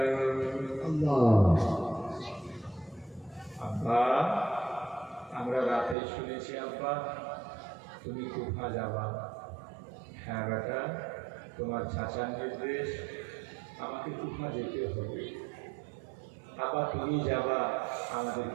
আব্বা, আমরা রাতে শুনেছি আব্বা তুমি কুফা যাবা। হ্যাঁ বেটা, তোমার চাচার নির্দেশ, আমাকে কুফা যেতে হবে। আবার তুমি যাবা,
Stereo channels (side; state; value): left; drops out; at 6.0 s